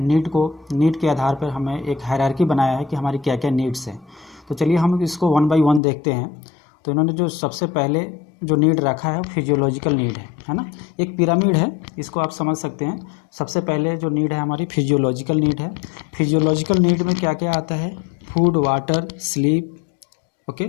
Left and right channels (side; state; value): right; drops out; at 5.8 s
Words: नीड के आधार पर हमें एक हायरार्की बनाया है कि हमारी क्या क्या नीड्स हैं। तो चलिए हम इसको वन बाय वन देखते हैं। तो इन्होंने जो सबसे पहले जो नीड रखा है फिजियोलॉजिकल नीड है ना। एक पिरामिड है, इसको आप समझ सकते हैं। सबसे पहले जो नीड है हमारी फिजियोलॉजिकल नीड है। फिजियोलॉजिकल नीड में क्या क्या आता है? Food, water, sleep, okay,